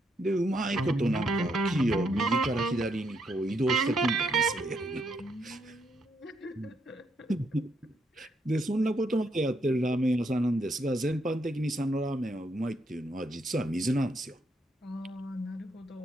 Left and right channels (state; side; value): normal; both; correlation 0.76